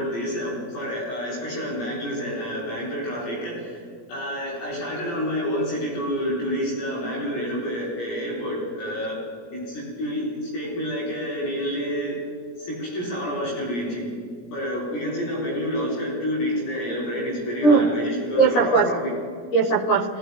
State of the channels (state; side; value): late; right; 17 ms